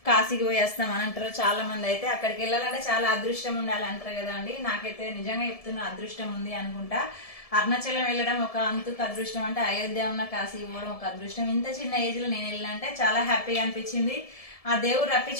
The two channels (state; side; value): late; right; 1.7 ms